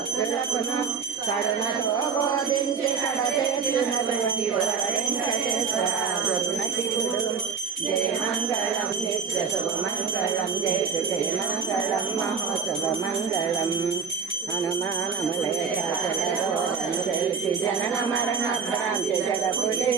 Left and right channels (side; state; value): left; quieter; 5.8 dB